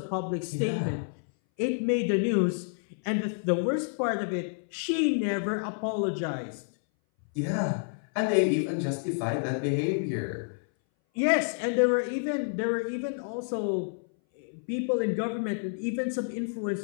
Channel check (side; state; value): right; silent; 58 dB below the other